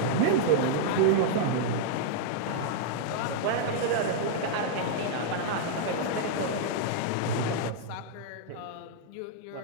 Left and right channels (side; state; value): both; different; correlation -0.01